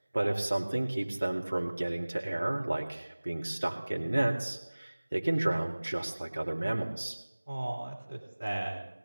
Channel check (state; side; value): inverted; both; correlation -1.00